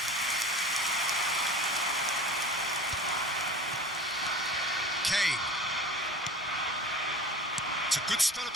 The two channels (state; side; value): normal; both; correlation 0.38